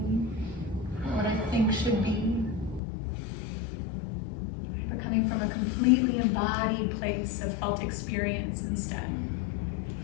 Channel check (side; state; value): right; drops out; at 2.8 s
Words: or what I think should be. But coming from a completely embodied place of felt experience instead.